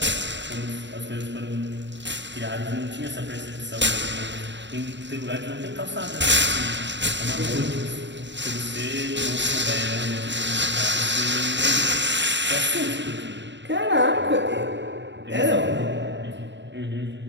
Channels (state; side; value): late; left; 0.53 ms